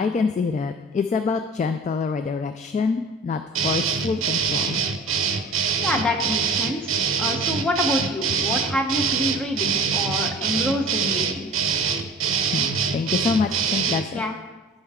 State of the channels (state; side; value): normal; both; correlation 0.43